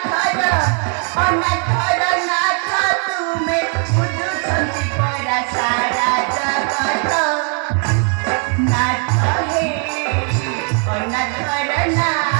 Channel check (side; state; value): left; quieter; 39.9 dB